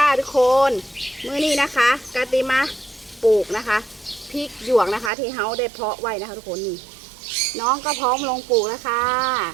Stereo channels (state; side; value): drops out; left; at 5.1 s